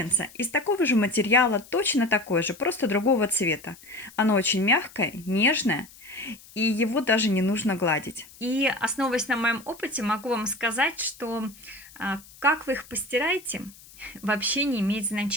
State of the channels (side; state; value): left; noise; hiss, 22 dB below the sound